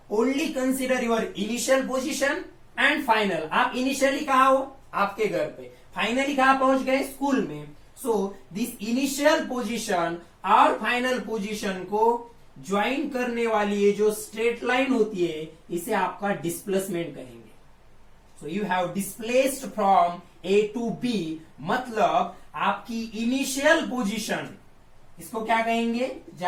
only consider your initial position and final. आप initially कहाँ हो? आपके घर पे. Finally कहाँ पहुंच गए? स्कूल में. So, this initial position और final position को ज्वाइन करने वाली ये जो स्ट्रेट लाइन होती है, इसे आपका डिस्प्लेसमेंट कहेंगे. So you have displaced from A to B, मतलब आपकी इनिशियल पोजीशन, इसको क्या कहेंगे?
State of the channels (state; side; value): identical; both; correlation 1.00